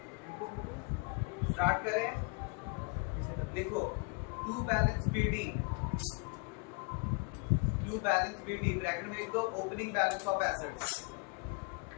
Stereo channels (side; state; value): right; quieter; 32.9 dB